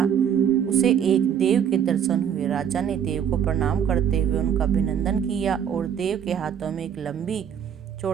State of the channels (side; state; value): left; quieter; 8.5 dB